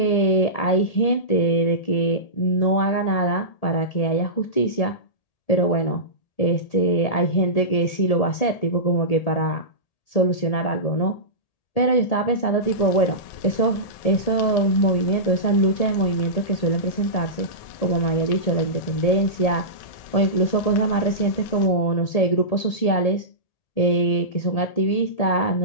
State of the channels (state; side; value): late; right; 1.8 ms